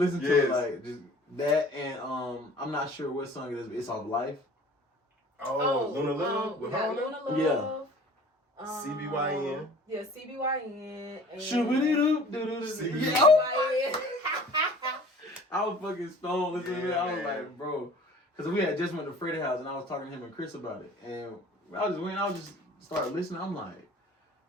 to it, like just that, and I'm not sure what song it is. But it's off Life. Oh, Luna Love with Luna Love. Yeah. CBYN. Yeah, CBYN. Shoo-ba-dee-doop-doo-doo-doo. Yeah. I was fucking stoned listening to it. I was like, bro. Because we had just went to Freddie's house and I was talking to him and Chris about it. And I just started listening. I'm like,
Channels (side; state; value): both; normal; correlation 0.48